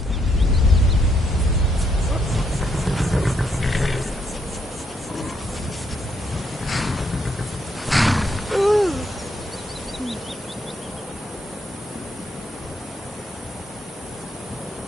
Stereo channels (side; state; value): both; normal; correlation 0.74